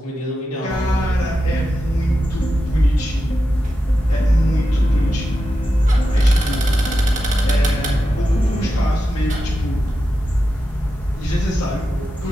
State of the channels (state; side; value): normal; both; correlation 0.90